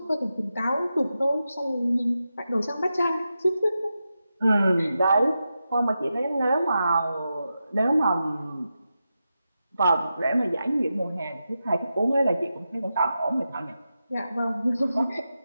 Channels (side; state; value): both; inverted; correlation -0.90